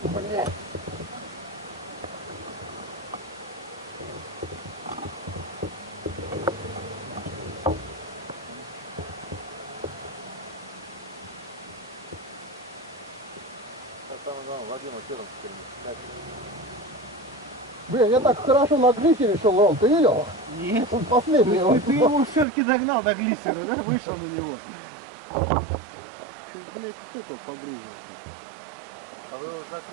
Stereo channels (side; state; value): left; drops out; at 22.5 s